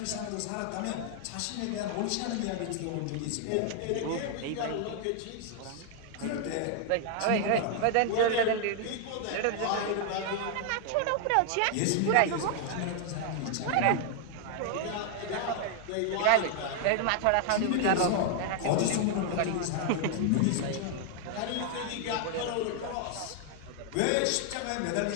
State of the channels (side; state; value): both; different; correlation 0.00